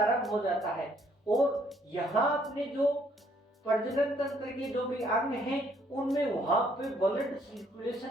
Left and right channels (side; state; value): both; normal; correlation 0.66